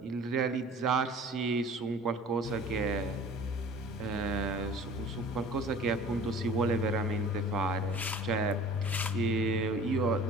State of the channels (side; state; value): both; normal; correlation 0.45